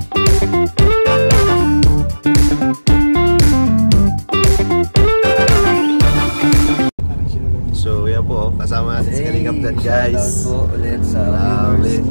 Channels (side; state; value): both; inverted; correlation -1.00